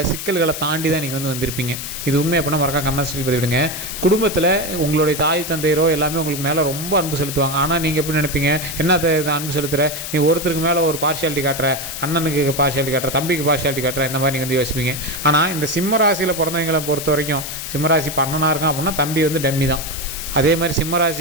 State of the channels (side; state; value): left; noise; hiss, 7 dB below the sound